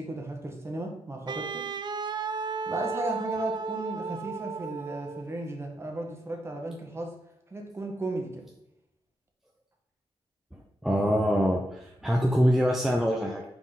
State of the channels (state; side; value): normal; both; correlation 0.83